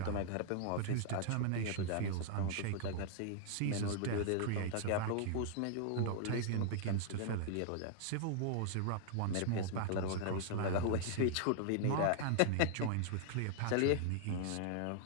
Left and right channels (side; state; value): both; different; correlation -0.01